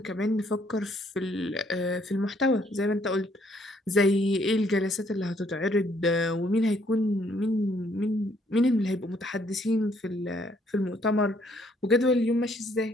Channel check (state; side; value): normal; both; correlation 0.67